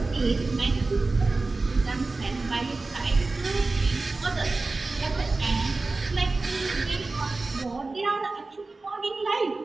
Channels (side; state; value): left; quieter; 3.5 dB